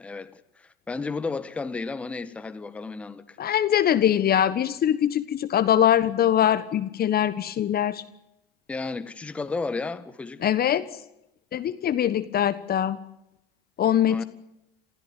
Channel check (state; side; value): quieter; right; 9.3 dB